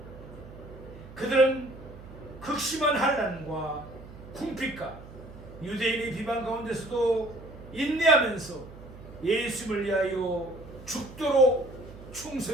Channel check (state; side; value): noise; right; hum, 16 dB below the sound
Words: 그들은 극심한 환난과 궁핍과 유대인의 비방 가운데서도 인내하면서 예수님을 위하여 죽도록